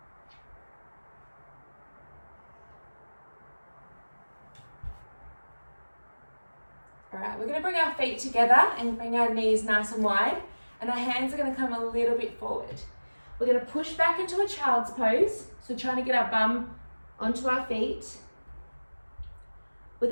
All right, we're going to bring our feet together and bring our knees nice and wide, and our hands are going to come a little bit forward. We're going to push back into a child's pose, so trying to get our bum onto our feet. We're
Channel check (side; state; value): both; inverted; correlation -1.00